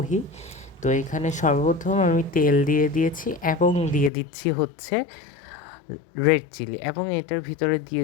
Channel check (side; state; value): right; drops out; at 4.1 s